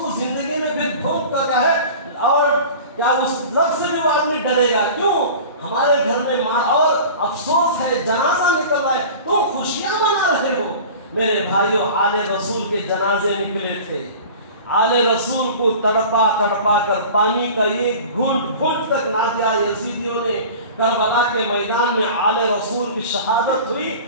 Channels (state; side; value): inverted; both; correlation -0.39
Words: زندگی میں پھر ڈھول کا کیا ہے، اور کیا اس لفظ سے بھی وہ آدمی ڈرے گا؟ کیوں؟ ہمارے گھر میں مار، اور افسوس ہے جنازہ نکل رہا ہے، تم خوشیاں منا رہے ہو۔ میرے بھائیوں، آل رسول کے جنازے نکلے تھے، آل رسول کو تڑپا تڑپا کر پانی کا ایک گھونٹ گھونٹ تک نہ دیا یزیدیوں نے۔ کربلا کے میدان میں آل رسول کی شہادت ہوئی،